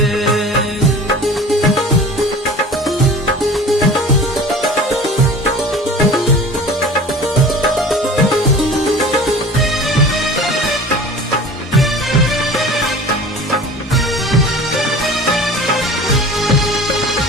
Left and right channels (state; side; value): normal; both; correlation 0.41